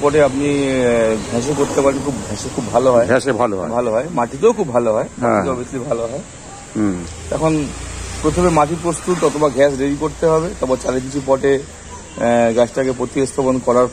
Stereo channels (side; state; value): both; identical; correlation 1.00